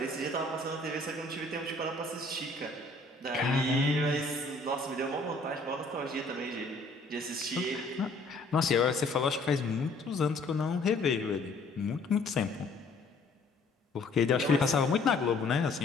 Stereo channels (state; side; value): quieter; right; 3.2 dB